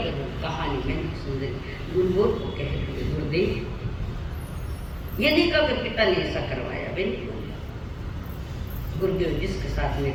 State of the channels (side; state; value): both; identical; correlation 1.00